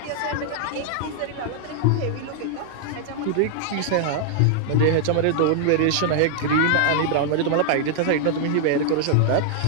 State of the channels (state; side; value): different; both; correlation -0.01